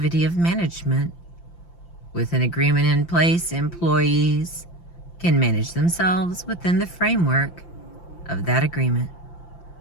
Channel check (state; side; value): late; right; 5.8 ms